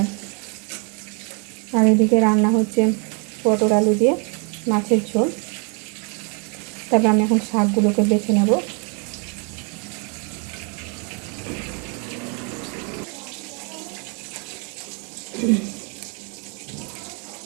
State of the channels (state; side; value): quieter; left; 35.6 dB